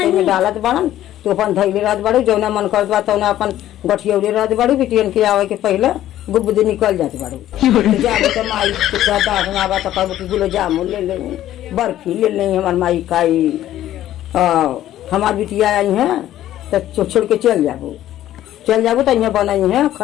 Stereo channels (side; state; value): right; quieter; 13.0 dB